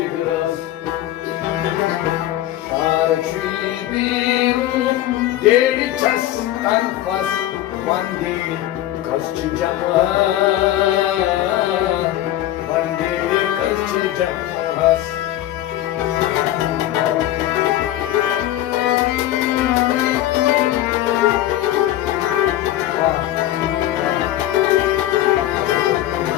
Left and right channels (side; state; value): right; quieter; 13.7 dB